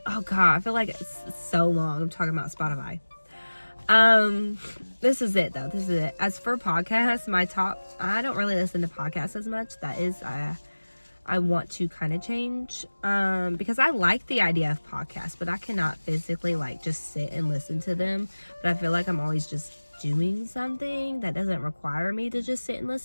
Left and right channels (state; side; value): inverted; both; correlation -1.00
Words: Oh God, I feel like it's so long. I'm talking about Spotify. This is it though. This is it. As for podcasts, I don't really listen to podcasts as much. That is, I want to kind of change, because I like the idea of podcasts, but I cannot physically like just sit and listen to them. But I feel like I'm always just doing something that doesn't require me to just sit and